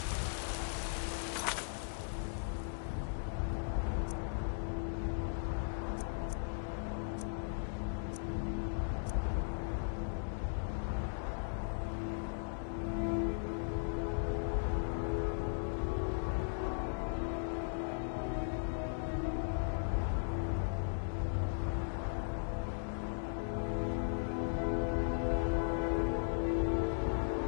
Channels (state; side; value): silent; right; digital silence